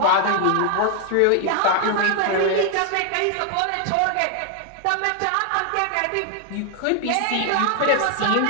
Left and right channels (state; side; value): different; both; correlation 0.00